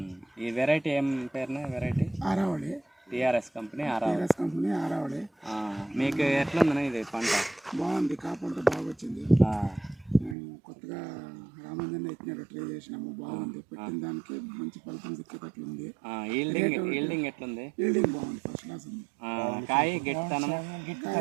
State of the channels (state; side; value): drops out; left; at 10.4 s